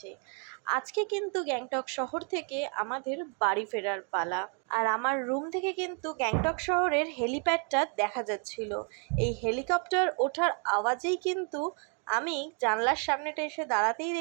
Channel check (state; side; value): quieter; left; 39.4 dB